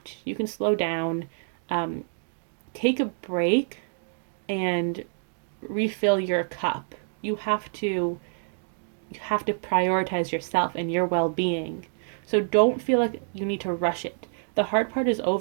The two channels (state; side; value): silent; left; digital silence